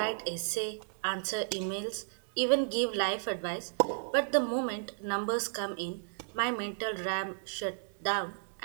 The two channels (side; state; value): left; silent; digital silence